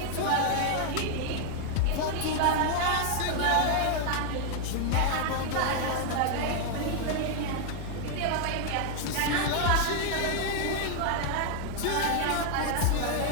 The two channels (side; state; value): both; different; correlation 0.00